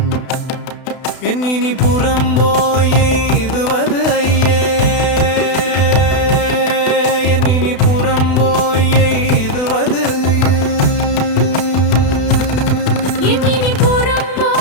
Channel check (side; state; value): right; late; 32 ms